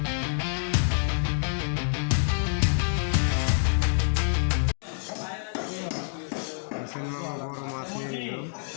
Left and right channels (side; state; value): right; silent; digital silence